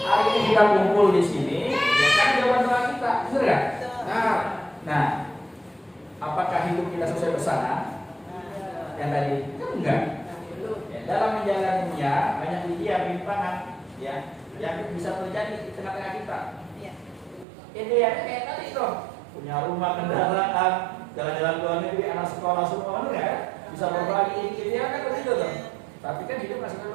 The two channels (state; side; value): drops out; left; at 17.4 s